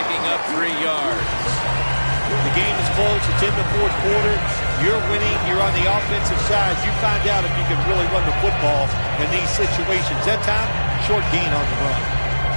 up 3 yards. The game is close. It's in the fourth quarter. You're winning. You're on the offensive side. You find out if you can really run the football in these situations. That time, short gain on the run.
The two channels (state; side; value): inverted; both; correlation -1.00